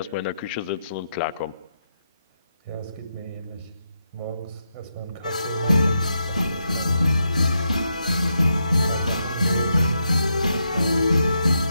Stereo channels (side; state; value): both; inverted; correlation -0.83